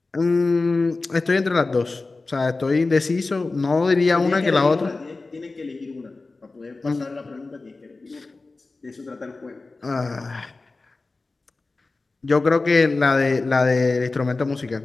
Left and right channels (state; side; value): quieter; right; 3.5 dB